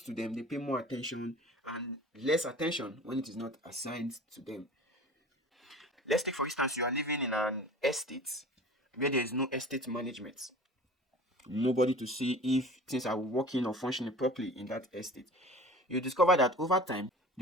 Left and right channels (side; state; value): both; normal; correlation 0.40